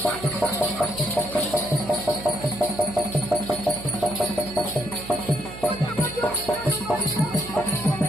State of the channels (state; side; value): noise; right; hum, 14 dB below the sound